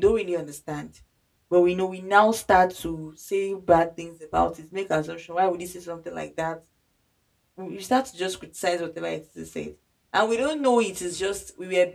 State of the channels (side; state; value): both; identical; correlation 1.00